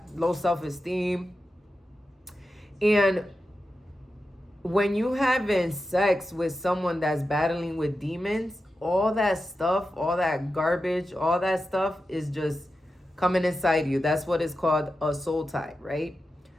low self-esteem. And when you having sex with someone that's battling with demons, all that stuff, all that garbage, all that stuff is just coming inside you. That's what is called a soul tie, right?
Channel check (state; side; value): normal; both; correlation 0.91